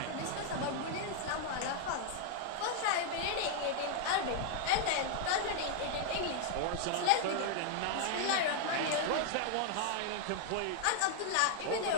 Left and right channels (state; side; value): different; both; correlation 0.00